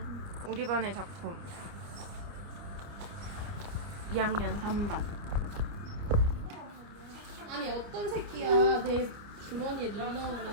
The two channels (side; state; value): left; late; 29 ms